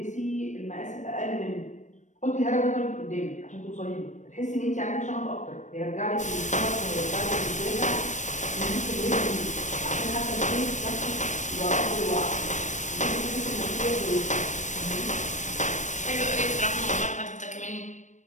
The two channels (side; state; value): right; late; 0.35 ms